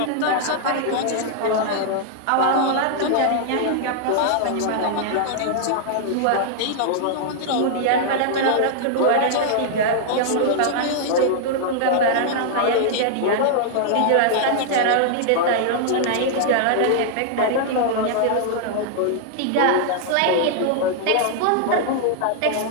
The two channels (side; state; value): both; different; correlation -0.01